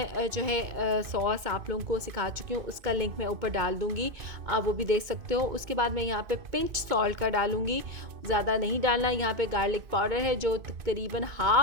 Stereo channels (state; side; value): late; left; 2.5 ms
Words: जो है सॉस आप लोगों को सिखा चुकी हूँ, उसका लिंक मैं ऊपर डाल दूँगी, आप वो भी देख सकते हो। उसके बाद मैं यहाँ पे पिंच सॉल्ट का डालूँगी, ज़्यादा नहीं डालना। यहाँ पे गार्लिक पाउडर है जो तकरीबन